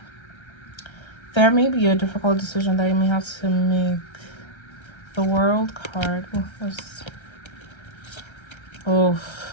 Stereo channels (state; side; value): late; right; 1.3 ms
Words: There may be a difficult decision that you may have to make. The World card.